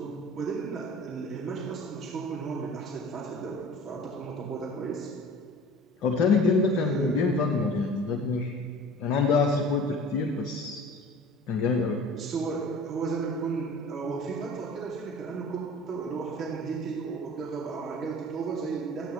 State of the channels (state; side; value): normal; both; correlation 0.43